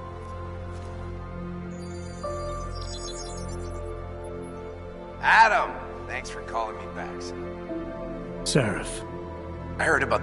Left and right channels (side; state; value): both; identical; correlation 1.00